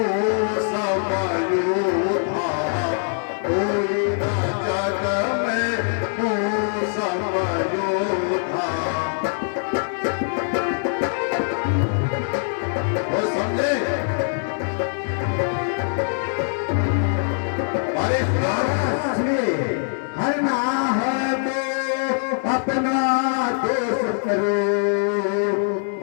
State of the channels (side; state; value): right; silent; digital silence